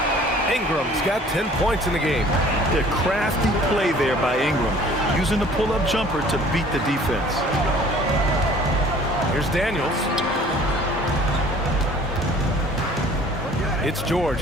Ingram's got 10 points in the game. The crafty play there by Ingram, using the pull-up jumper to beat the defense. Here's Daniels. It's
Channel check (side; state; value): both; normal; correlation 0.52